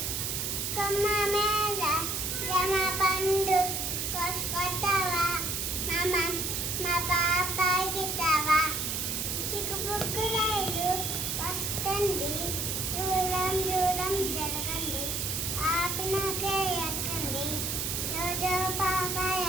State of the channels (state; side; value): noise; right; hiss, 1 dB below the sound